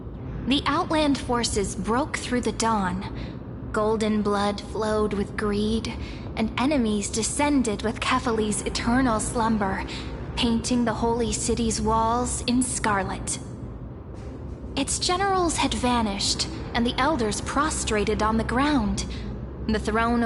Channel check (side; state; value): both; identical; correlation 1.00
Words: The Outland forces broke through the dawn. Golden blood flowed with greed, and enemies descended with Kefali's eternal slumber, painting the holy city's walls in scarlet. Its generals had vanished, and the elders prostrated on the ground. The throne